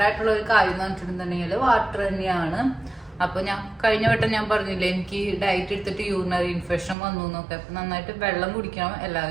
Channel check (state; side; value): drops out; left; at 7.0 s